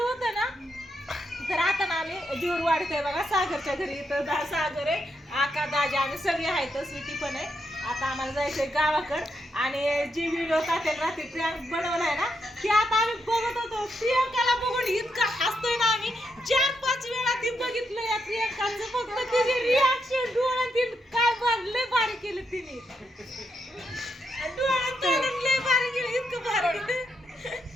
होतं ना तर आता ना आम्ही जीवर वाढतोय बघा सागरच्या घरी इथं सागर आहे आका दाजा आम्ही सगळे आहेत स्वीटी पण आहे आता आम्हाला जायचंय गावाकडं आणि जी व्हिडिओ टाकेल रात्री प्रियांक बनवलाय ना ती आता आम्ही बघत होतो प्रियांकाला बघून इतका हसतोय ना आम्ही 4-5 वेळा ती बघितलं या प्रियांकाचं फक्त तिचे रिॲक्शन डोळ्यातील काय लय भारी केलं तिने डोळ्यात तोडून लय भारी केलं इतकं भारी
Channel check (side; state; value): both; normal; correlation 0.81